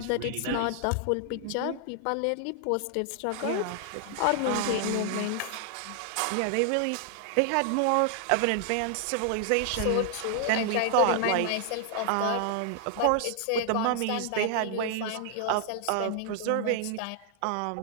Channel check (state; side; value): different; both; correlation 0.00